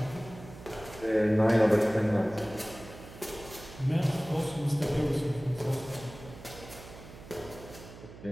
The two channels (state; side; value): noise; right; hum, 17 dB below the sound